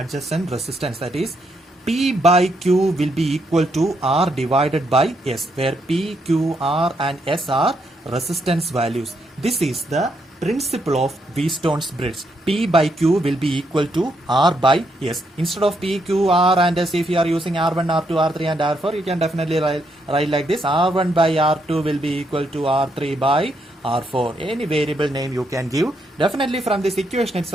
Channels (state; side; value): normal; both; correlation 0.77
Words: resistance. That is, P by Q will be equal to R divided by S, where P, Q, R and S are resistance values. This is the principle of Wheatstone's bridge. P by Q will be equal to R by S. Instead of P, Q, R and S, if you are using R1, R2, R3 and R4, you can definitely write like this. R1 by R2 will be equal to R3 by R4. Any variable name you can give. Definitely from this equation